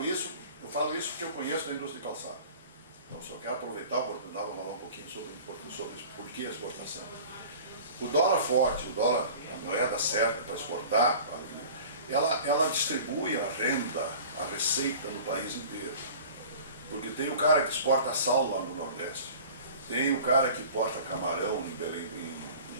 isso porque eu conheço a indústria de calçado. Então, só quero aproveitar a oportunidade para falar um pouquinho sobre por que a exportação. O dólar forte, a moeda certa para exportar, ela distribui a renda, a receita no país inteiro. Porque tem o cara que exporta sal lá no Nordeste, tem o cara que exporta camarão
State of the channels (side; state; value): both; inverted; correlation -0.43